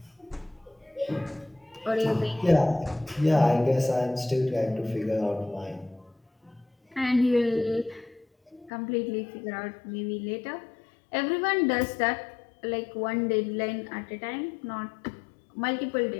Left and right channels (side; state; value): right; drops out; at 8.7 s